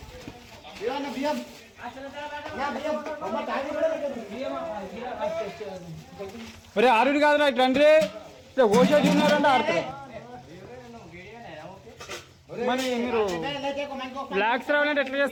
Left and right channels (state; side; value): identical; both; correlation 1.00